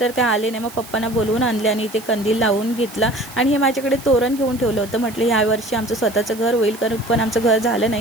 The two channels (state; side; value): noise; right; hiss, 18 dB below the sound